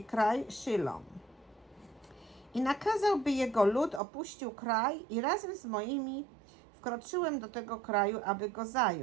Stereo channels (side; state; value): left; drops out; at 4.0 s